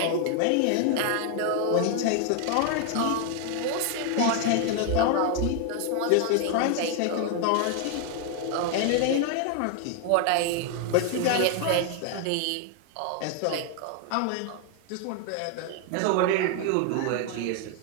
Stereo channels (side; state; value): both; different; correlation 0.00